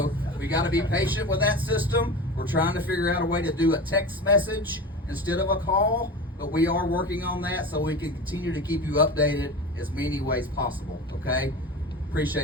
we got to be patient with that system. We're trying to figure out a way to do a text message instead of a call, but we are working on that so we can continue to keep you updated as many ways possible, okay?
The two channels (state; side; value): normal; both; correlation 0.30